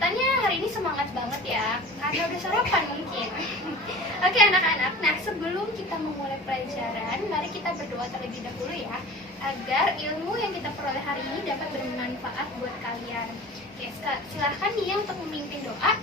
hari ini semangat banget ya. Karena udah sarapan mungkin. Oke, anak-anak. Nah, sebelum kita memulai pelajaran, mari kita berdoa terlebih dahulu ya, agar ilmu yang kita peroleh hari ini dapat bermanfaat buat kalian. Oke, silahkan nih yang untuk memimpin doa.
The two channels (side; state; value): both; normal; correlation 0.39